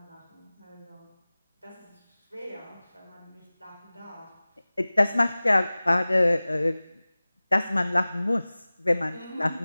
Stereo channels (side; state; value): both; inverted; correlation -0.99